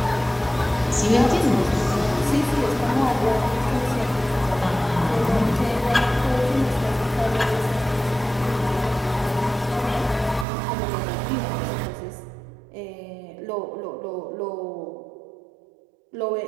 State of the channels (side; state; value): left; drops out; at 10.5 s